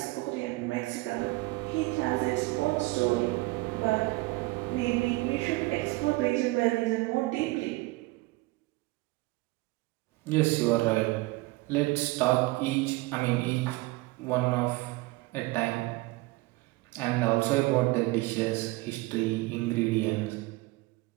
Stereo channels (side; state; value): left; quieter; 21.6 dB